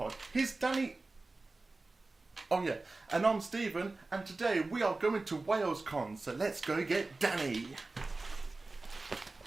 Here's Danny. Oh yeah, and I'm Stephen, and today we are going to WalesCon, so let's go get Danny.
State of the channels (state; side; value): quieter; left; 3.3 dB